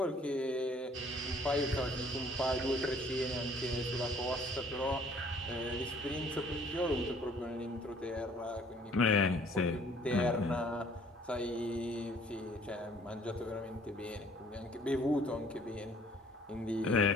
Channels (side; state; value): both; normal; correlation 0.57